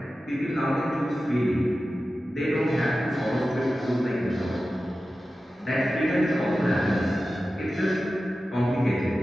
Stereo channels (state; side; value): normal; both; correlation 0.94